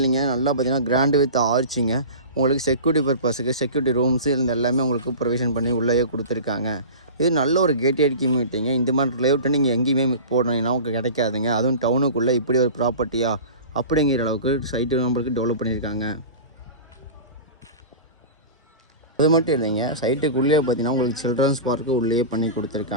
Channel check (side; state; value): both; inverted; correlation -0.33